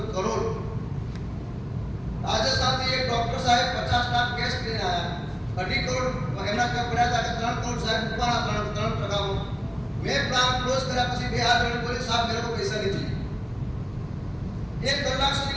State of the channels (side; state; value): both; identical; correlation 1.00